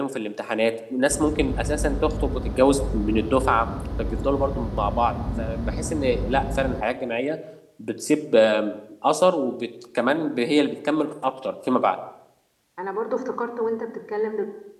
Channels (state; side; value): identical; both; correlation 1.00